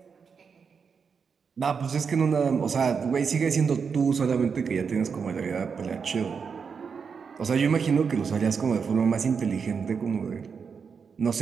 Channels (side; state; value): left; quieter; 6.0 dB